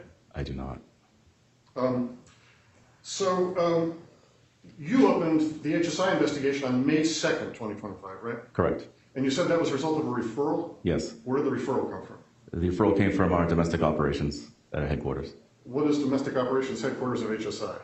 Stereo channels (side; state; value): both; identical; correlation 1.00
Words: I do not. You opened the HSI investigation on May 2nd, 2025, right? Correct. And you said that was a result of a referral? Yes. Where did the referral come from? The referral came from our domestic operations at our headquarters. What is domestic operations headquarters of HSI?